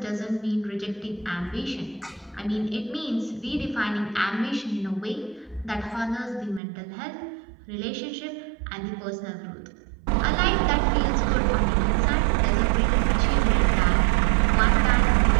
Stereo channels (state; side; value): drops out; left; at 6.6 s